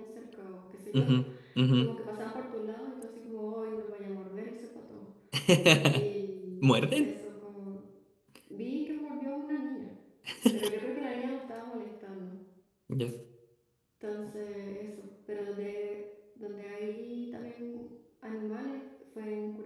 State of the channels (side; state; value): both; identical; correlation 1.00